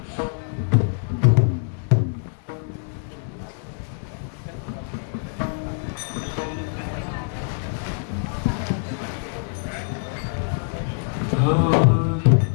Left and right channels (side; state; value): right; silent; 62 dB below the other